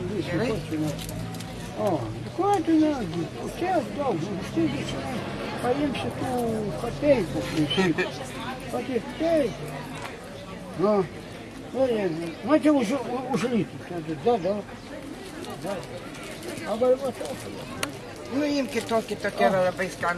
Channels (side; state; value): both; identical; correlation 1.00